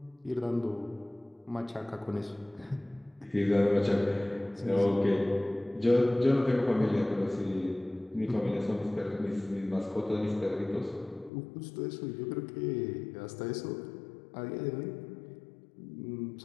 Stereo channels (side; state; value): right; drops out; at 11.3 s